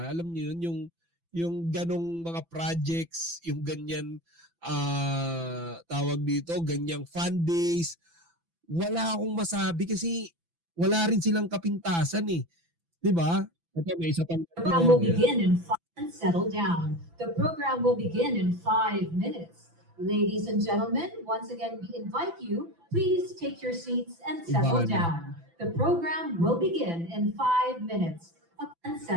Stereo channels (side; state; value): left; late; 6.0 ms